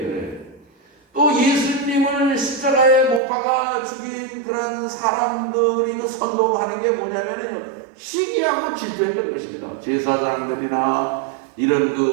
또 예수님을 십자가에 못 박아 죽인 그런 사람들이 그 선동하는 게 뭐냐면요, 시기하고 질투했던 것입니다. 제사장들이나 이런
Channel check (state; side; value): drops out; left; at 3.2 s